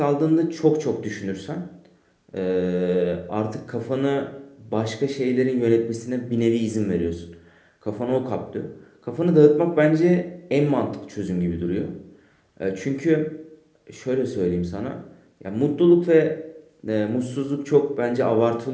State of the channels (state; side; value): identical; both; correlation 1.00